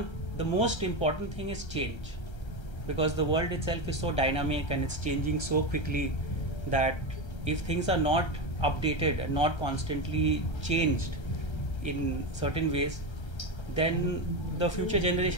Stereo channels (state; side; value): late; right; 1.3 ms